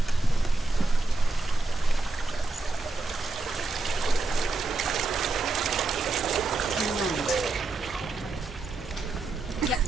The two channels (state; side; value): quieter; left; 3.3 dB